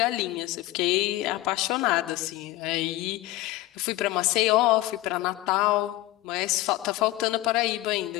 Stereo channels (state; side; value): quieter; right; 17.2 dB